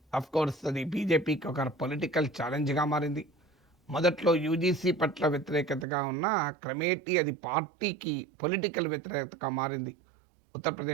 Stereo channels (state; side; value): drops out; left; at 5.9 s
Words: అఫ్ కోర్స్ అది బీజేపీకి ఒక పొలిటికల్ ఛాలెంజ్గా మారింది. మొదట్లో యూజీసీ పట్ల వ్యతిరేకతగా ఉన్న క్రమేటీ అది పార్టీకి పొలిటికల్ వ్యతిరేకతగా మారింది.